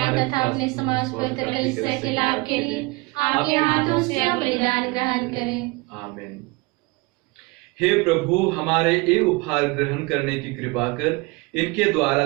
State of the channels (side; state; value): left; quieter; 25.5 dB